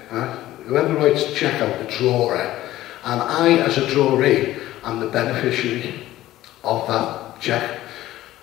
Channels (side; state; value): right; quieter; 15.0 dB